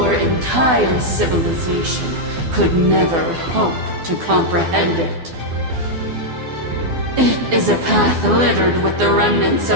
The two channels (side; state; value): left; late; 12 ms